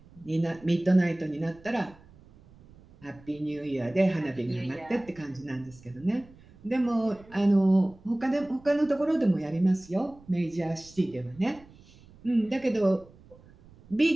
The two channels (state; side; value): noise; right; rumble, 25 dB below the sound